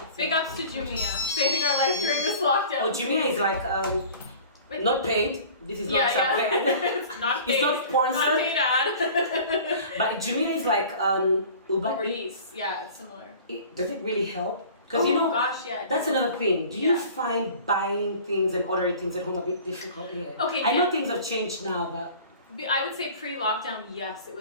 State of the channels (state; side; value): inverted; both; correlation -0.44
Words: Big ups to Jumia, saving our life during this lockdown. Oh, Jumia is like not paid. This is not paid. It's not paid. It's not sponsored. Not paid ad. But Jumia is like Uber Eats. Yeah, it's similar. Does it really help? Because that's another thing. Do you find buying things and ordering things at home a bit difficult here? Okay, I know things have changed now, but I would say pre-lockdown, yes, it